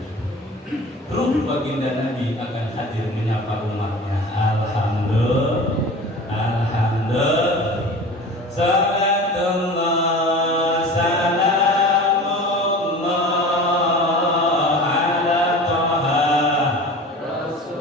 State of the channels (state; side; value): normal; both; correlation 0.37